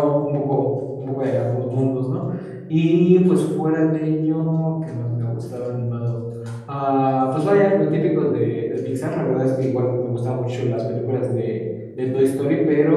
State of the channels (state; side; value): identical; both; correlation 1.00